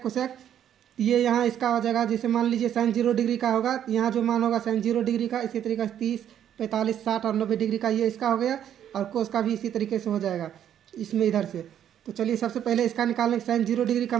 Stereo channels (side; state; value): left; quieter; 10.0 dB